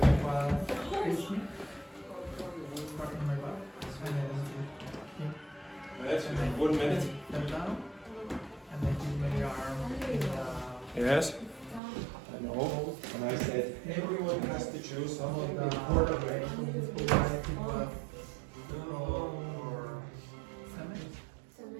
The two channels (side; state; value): left; drops out; at 11.8 s